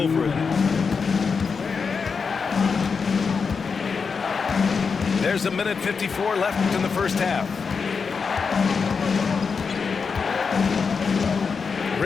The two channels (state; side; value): quieter; right; 5.4 dB